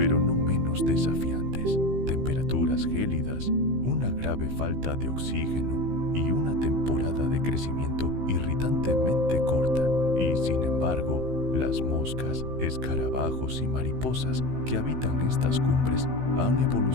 no menos desafiantes. Temperaturas gélidas, una grave falta de oxígeno y una temporada de crecimiento irritantemente corta. Y sin embargo, las moscas, escarabajos y mariposas que habitan estas cumbres han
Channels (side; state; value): left; late; 15 ms